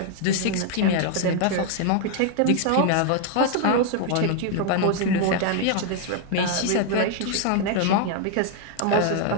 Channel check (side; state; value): both; different; correlation 0.00